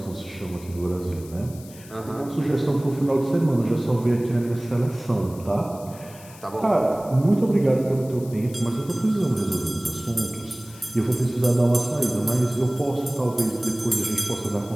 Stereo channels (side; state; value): left; noise; hiss, 20 dB below the sound